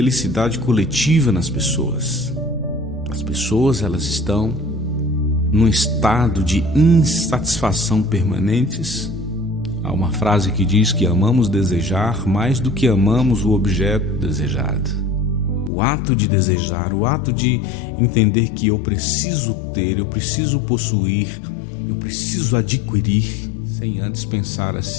coletiva nas pessoas. As pessoas, elas estão num estado de insatisfação permanentes. Há uma frase que diz que amamos desejar mais do que amamos o objeto desejado. O ato de desejar, o ato de entender que eu preciso ter, eu preciso possuir, eu preciso adquirir, sem antes pensar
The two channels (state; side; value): drops out; right; at 15.7 s